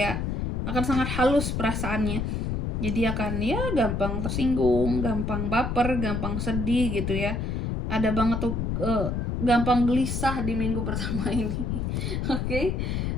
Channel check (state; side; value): noise; left; rumble, 1 dB below the sound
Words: akan sangat halus perasaannya. Jadi akan ya gampang tersinggung, gampang baper, gampang sedih gitu ya. Ada banget tuh gampang gelisah di minggu pertama ini. Oke.